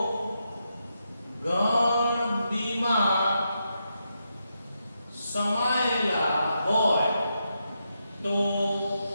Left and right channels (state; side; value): inverted; both; correlation -0.84